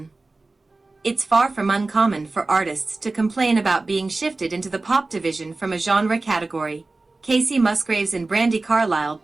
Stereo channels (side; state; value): left; quieter; 3.3 dB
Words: It's far from uncommon for artists to complain about being shifted into the pop division from a genre category. Casey Musgraves and Brandi Carlile